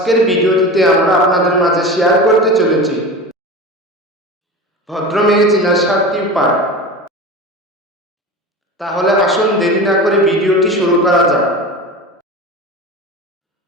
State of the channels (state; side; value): normal; both; correlation 0.30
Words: ভিডিওটিতে আমরা আপনাদের মাঝে শেয়ার করতে চলেছি ভদ্র মেয়ে চেনার 7টি উপায়। তাহলে আসুন দেরি না করে ভিডিওটি শুরু করা যাক।